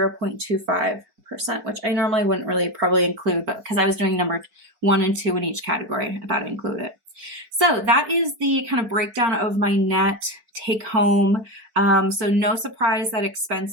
which I normally wouldn't really probably include, but because I was doing number 1 and 2 in each category, I thought I'd include it. So that is the kind of breakdown of my net take home. So no surprise that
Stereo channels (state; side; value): late; left; 4.7 ms